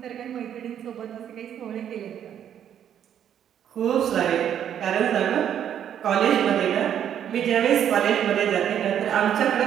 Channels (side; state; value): left; quieter; 9.6 dB